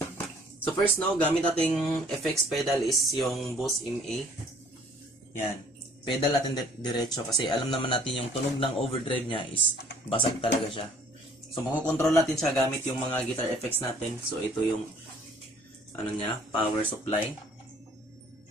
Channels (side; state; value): both; normal; correlation 0.57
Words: So first no, gamit nating FX pedal is yung Boss MA. Yan. Pedal natin diretso kasi alam naman natin yung tunog ng overdrive niya is basag talaga siya. So makokontrol natin siya gamit yung mga guitar effects natin. So ito yung ano niya, power supply.